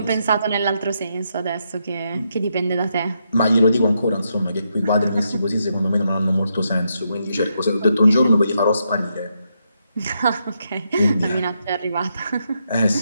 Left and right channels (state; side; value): inverted; both; correlation -0.80